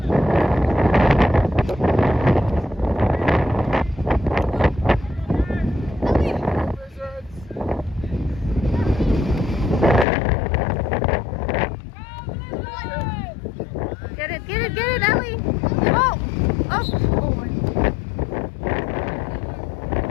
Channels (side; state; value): right; drops out; at 10.1 s